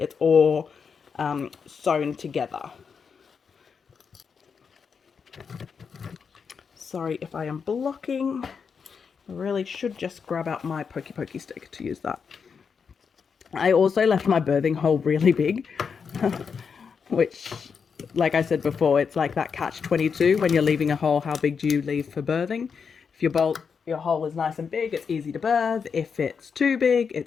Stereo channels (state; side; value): quieter; right; 6.1 dB